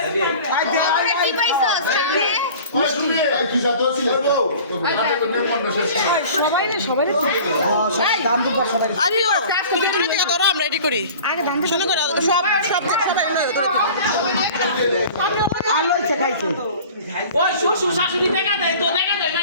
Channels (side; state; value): both; inverted; correlation -0.43